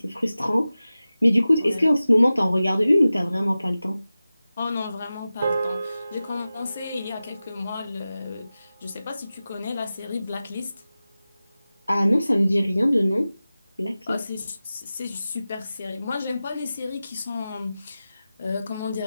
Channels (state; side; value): inverted; both; correlation -0.95